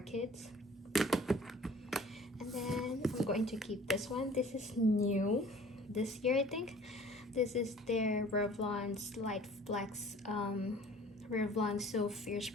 And then I'm going to keep this one. This is new this year, I think. This is their Revlon Slight Flex Revlon So Fierce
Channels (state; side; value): normal; both; correlation 0.49